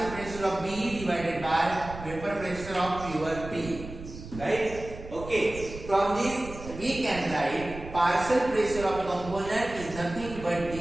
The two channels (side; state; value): right; noise; rumble, 12 dB below the sound